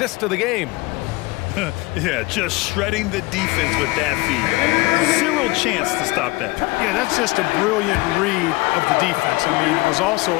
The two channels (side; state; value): right; quieter; 22.7 dB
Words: of the game. Yeah, just shredding the defense with that feed. Zero chance to stop that. Yeah, that's just a brilliant read of the defense. I mean, it was also